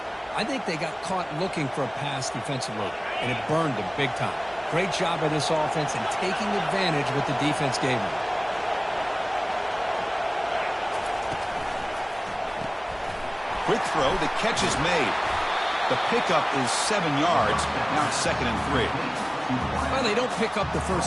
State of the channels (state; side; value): identical; both; correlation 1.00